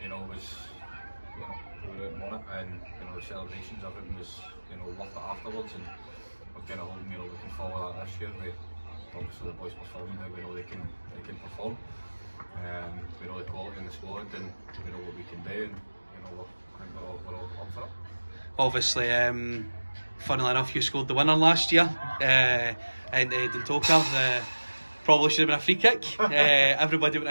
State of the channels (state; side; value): inverted; both; correlation -1.00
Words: was, we were out and won it, and the celebrations of it was, worth it afterwards, and we're kind of holding, looking forward to that this year. Obviously the boys performing how we know they can perform. We know the quality in the squad, and we know what we can do, and I think we're all up for it. Obviously, funnily enough, you scored the winner last year in Dundalk. Probably should have been a free kick. Everybody went